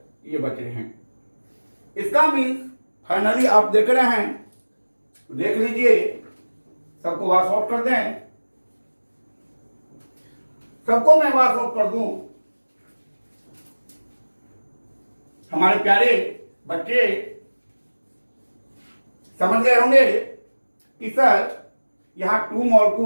ये बच रहे हैं। इसका मीन्स फाइनली आप देख रहे हैं, देख लीजिए, सबको वॉश आउट कर दें, सबको मैं वॉश आउट कर दूं। हमारे प्यारे बच्चे समझ गए होंगे कि सर यहां 2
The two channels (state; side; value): inverted; both; correlation -1.00